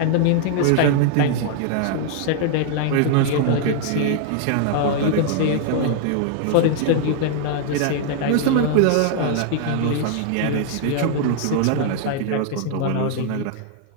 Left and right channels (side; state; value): both; different; correlation 0.00